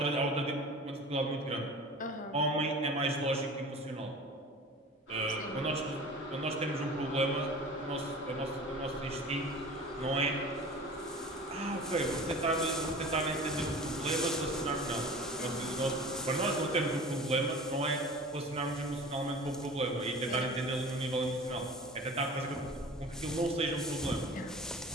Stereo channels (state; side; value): normal; both; correlation 0.39